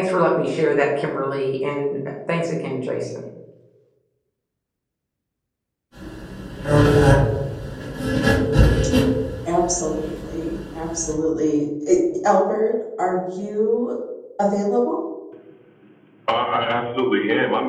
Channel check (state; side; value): identical; both; correlation 1.00